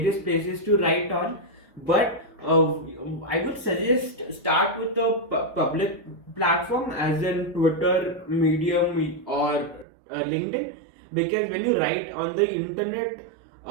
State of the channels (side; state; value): left; drops out; at 9.9 s